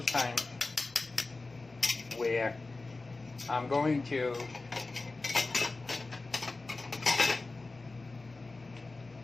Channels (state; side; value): quieter; right; 3.4 dB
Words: times where I'm going to